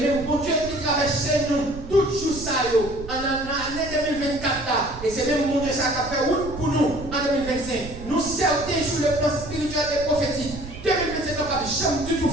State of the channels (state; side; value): noise; right; rumble, 13 dB below the sound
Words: bon Dieu qui traverse nous, tout jour ça, en l'année 2024 là, et c'est même bon Dieu ça qui a fait route pour nous en 2025. Nous certains sur le plan spirituel et prophétique. 2025 n'a pas jamais du tout